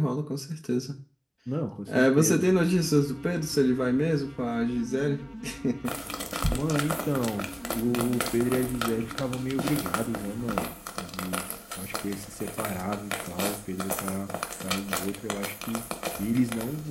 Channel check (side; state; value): both; identical; correlation 1.00